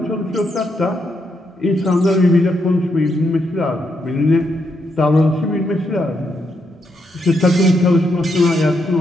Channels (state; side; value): normal; both; correlation 0.79